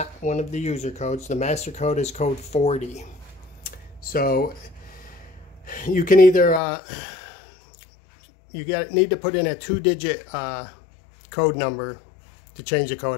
one of the user codes. The master code is code 40. So you can either need to put in a 2-digit code number to change the code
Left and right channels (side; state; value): right; drops out; at 6.6 s